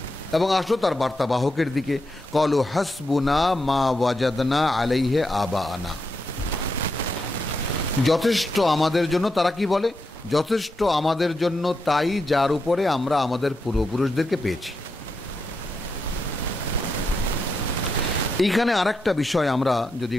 এবং আসো তার বার্তাবাহকের দিকে, ক্বালু হাসবুনা মা ওয়াজাদনা আলাইহি আবাআনা, যথেষ্ট আমাদের জন্য, তারা কি বলে? যথেষ্ট আমাদের জন্য তাই যার উপরে আমরা আমাদের পূর্বপুরুষদেরকে পেয়েছি। এইখানে আরেকটা বিষয় আমরা যদি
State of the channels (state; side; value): normal; both; correlation 0.84